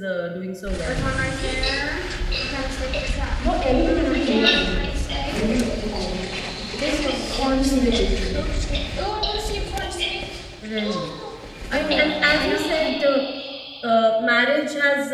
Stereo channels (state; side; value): identical; both; correlation 1.00